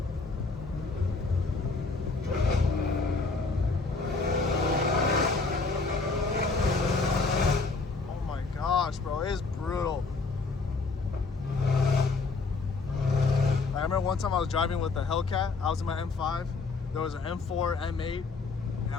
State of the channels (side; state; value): right; quieter; 4.0 dB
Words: Oh my gosh, bro, it is brutal. I remember one time I was driving with the Hellcat. I was in my M5. There was an M4, M8, and